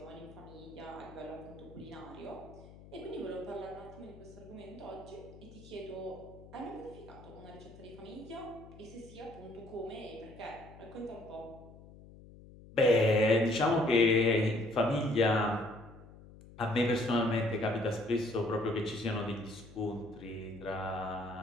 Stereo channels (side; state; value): left; noise; hum, 19 dB below the sound